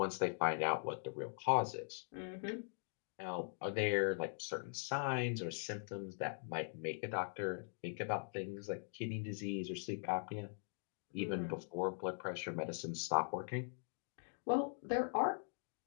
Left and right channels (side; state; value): right; silent; digital silence